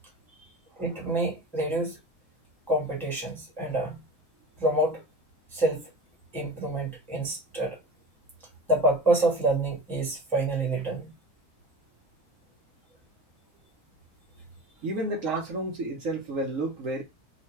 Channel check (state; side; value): normal; both; correlation 0.33